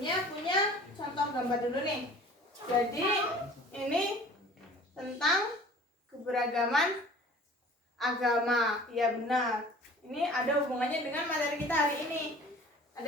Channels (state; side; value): normal; both; correlation 0.47